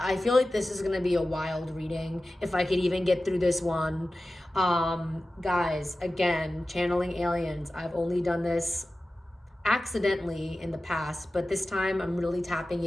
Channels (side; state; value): both; normal; correlation 0.95